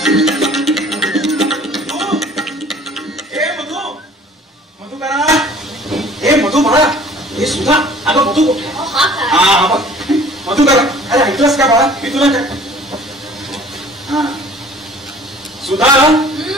हे सुद्धा अगं मधू कुठे? मधू करा. अरे ऐकलंस का बाळा, मी तुला काय सुधा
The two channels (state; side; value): normal; both; correlation 0.50